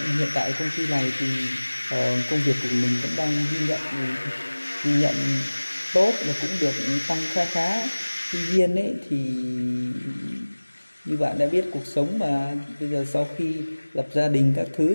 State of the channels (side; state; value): both; inverted; correlation -1.00